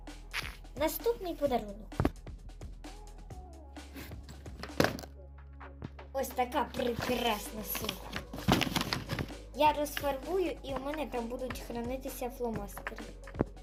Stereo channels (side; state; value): both; identical; correlation 1.00